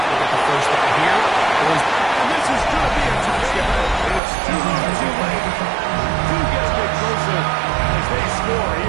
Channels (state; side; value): drops out; left; at 4.2 s